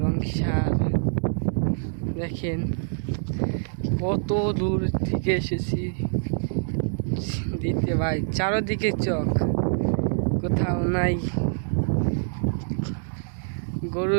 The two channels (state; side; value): silent; left; digital silence